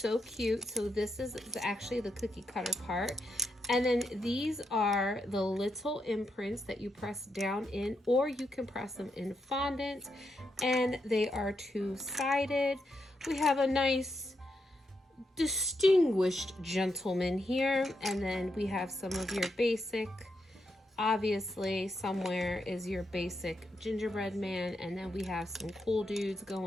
cute. So this is actually the cookie cutter part. And then these are the little imprints that you press down in, or you can press them in fondant. And they are two-sided. We have a nice distinguished gentleman here, and then we have some of your basic, obviously somewhere is your basic gingerbread man, and then we have some cool dudes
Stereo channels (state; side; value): normal; both; correlation 0.83